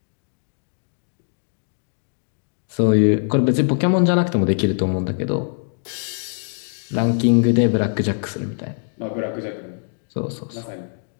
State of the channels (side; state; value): right; silent; digital silence